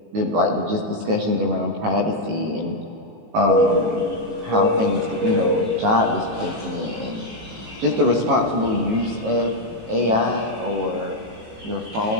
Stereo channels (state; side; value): late; left; 18 ms